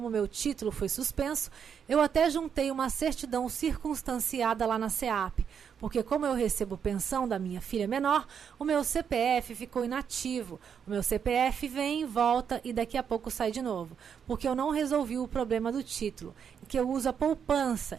meu título foi suspenso, eu até juntei uma certidão circunstanciada lá na CEAP, porque como eu recebo pensão da minha filha menor, o meu CPF ficou inativo. O meu CPF vem, volta e daqui a pouco sai de novo, porque eu não resolvi o problema do título, que eu uso a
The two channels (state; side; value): quieter; left; 7.5 dB